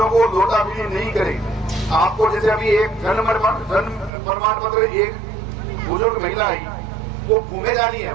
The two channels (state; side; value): drops out; left; at 4.1 s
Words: को लोटाफिली नहीं करे। आपको जैसे अभी एक जन्म प्रमाण पत्र, एक बुजुर्ग महिला आई, वो घूमे जा रही है।